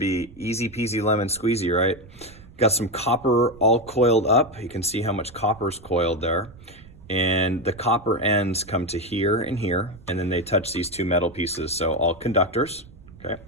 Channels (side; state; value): right; noise; rumble, 21 dB below the sound